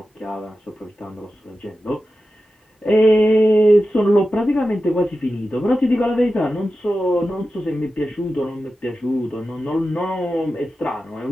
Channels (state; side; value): normal; both; correlation 0.92